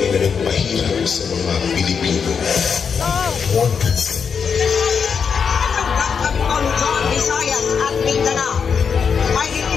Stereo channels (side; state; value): right; quieter; 6.3 dB